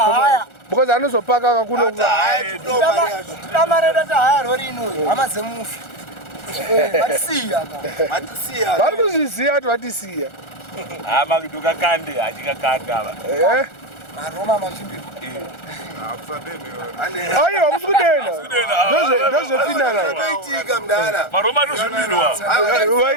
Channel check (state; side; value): late; right; 1.4 ms